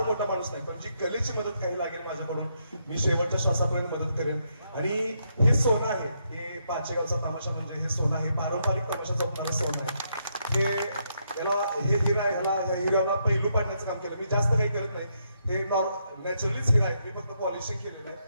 मोठा माणूस नाही, पण जी कलेची मदत काही लागेल माझ्याकडून मी शेवटच्या श्वासापर्यंत मदत करेन. आणि हे सोनं आहे, हे पाचेगावचा तमाशा म्हणजे हे सोनं आहे, पारंपरिक तमाशाचं मला सोनं आहे. हे हिरा आहे, ह्या हिऱ्याला पैलू पाडण्याचं काम केलं. मी जास्त काही करत नाही, हे नॅचरलीच हिरा आहे, मी फक्त पॉलिशिंग केलेलं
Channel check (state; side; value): inverted; both; correlation -0.77